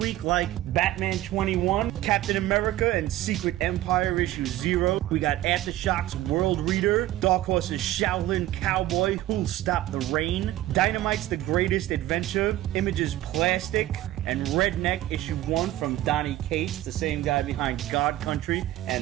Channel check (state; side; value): quieter; left; 14.9 dB